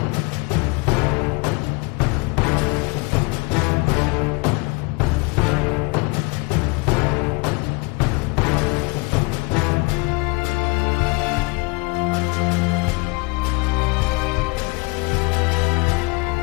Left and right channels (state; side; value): quieter; right; 27.9 dB